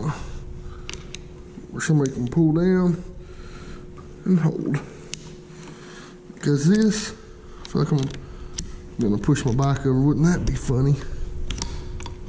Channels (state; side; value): identical; both; correlation 1.00